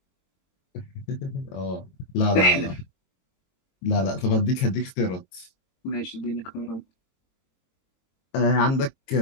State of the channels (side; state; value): right; late; 22 ms